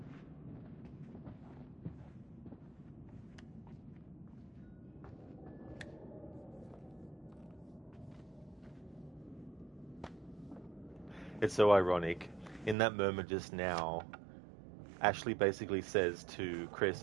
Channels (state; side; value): drops out; left; at 12.8 s